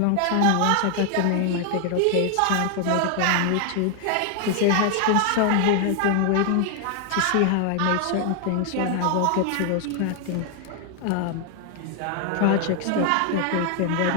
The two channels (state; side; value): different; both; correlation 0.00